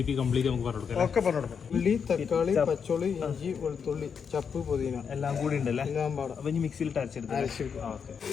കംപ്ലീറ്റ് നമുക്ക് പറഞ്ഞു കൊടുക്കാം. ഉള്ളി, തക്കാളി, പച്ചോളി, ഇഞ്ചി, വെളുത്തുള്ളി, ചപ്പ്, പുതിന എല്ലാം കൂടി ഉണ്ടല്ലേ. അപ്പൊ ഇനി മിക്സിയിൽ അരച്ചെടുത്ത്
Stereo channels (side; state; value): right; quieter; 6.6 dB